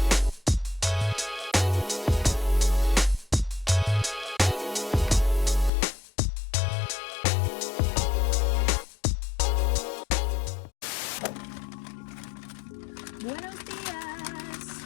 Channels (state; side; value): drops out; right; at 5.7 s